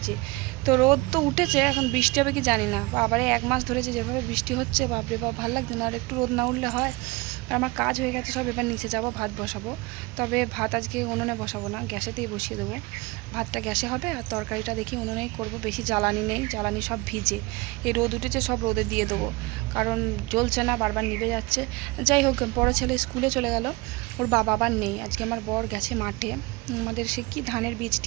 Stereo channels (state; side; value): quieter; left; 22.9 dB